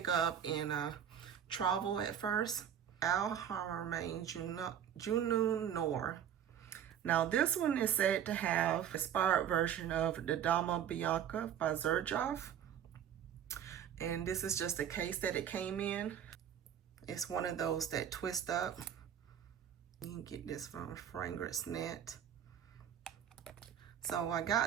up in travel at first. Al Haramain Junun Noir. Now this one is said to have an inspired version of the Dama Bianca by Xerjoff. And this is just the case that it came in. It's one of those that twist up. You can get this from Fragrance Net. So I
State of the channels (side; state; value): left; quieter; 9.3 dB